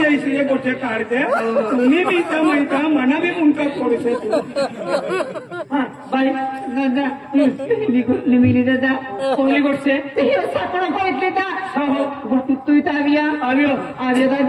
गोष्ट काढते तुम्ही बी इथं माहिता मना बी मुंका पडू बाई दादा निमिली दादा कोहली गोष्ट सापडा पळितले तू इथं आव्या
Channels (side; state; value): both; identical; correlation 1.00